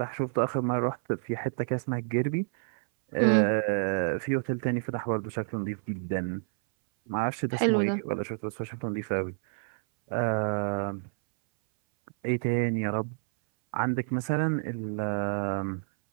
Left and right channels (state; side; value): silent; left; 59 dB below the other